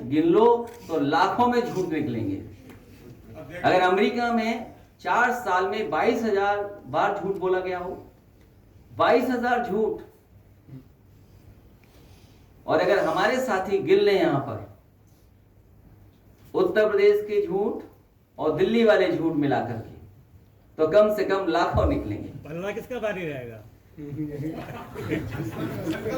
गिन लो तो लाखों में झूठ निकलेंगे। अगर अमेरिका में 4 साल में 22,000 बार झूठ बोला गया हो, 22,000 झूठ, और अगर हमारे साथी गिन लें यहां पर उत्तर प्रदेश के झूठ और दिल्ली वाले झूठ मिलाकर के, तो कम से कम लाखों निकलेंगे। पलड़ा किसका भारी रहेगा?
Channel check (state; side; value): identical; both; correlation 1.00